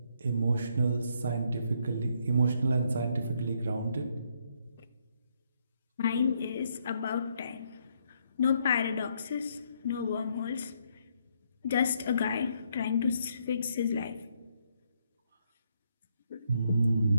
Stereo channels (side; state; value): both; inverted; correlation -0.74